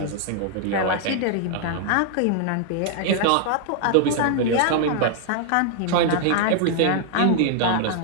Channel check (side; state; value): both; different; correlation 0.00